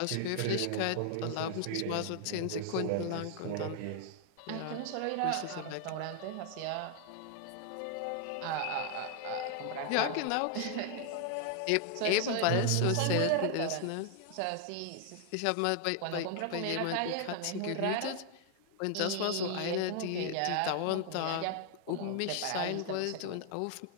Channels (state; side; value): different; both; correlation 0.00